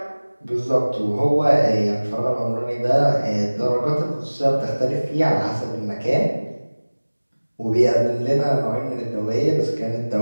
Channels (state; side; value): inverted; both; correlation -1.00